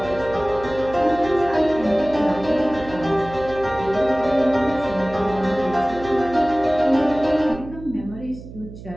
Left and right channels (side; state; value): right; noise; hum, 15 dB below the sound